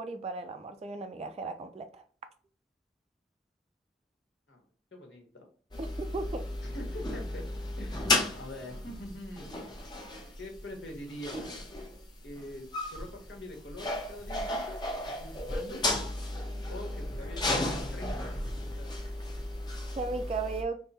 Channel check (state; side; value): normal; both; correlation 0.51